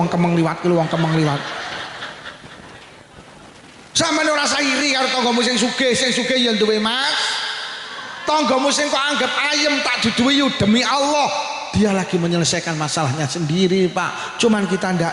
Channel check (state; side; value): identical; both; correlation 1.00